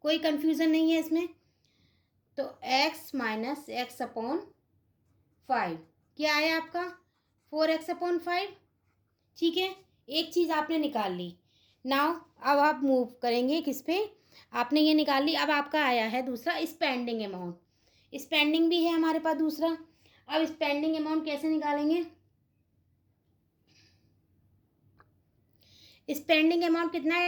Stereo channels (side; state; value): both; identical; correlation 1.00